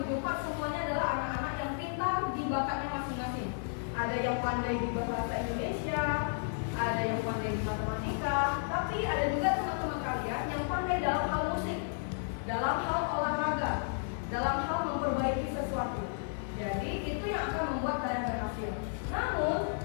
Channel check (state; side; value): silent; right; digital silence